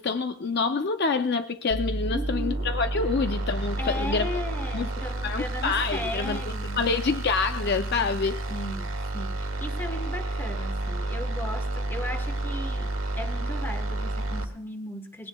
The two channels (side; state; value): both; normal; correlation 0.41